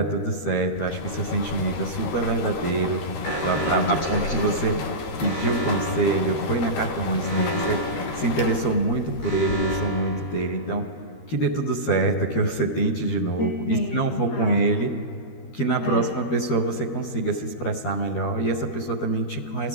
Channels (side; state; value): right; late; 13 ms